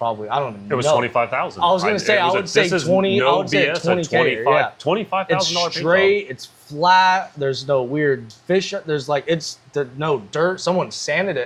I don't even know. It was $25,000. I was going to say, I would say 20, I would say 20K. Yeah. $25,000 It's straight, it's flat, there's no weird fish, there's like, no dirt, someone sanded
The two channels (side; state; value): both; identical; correlation 1.00